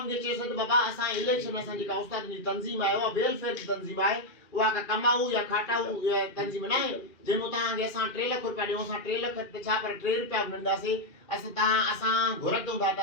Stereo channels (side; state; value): right; late; 2.4 ms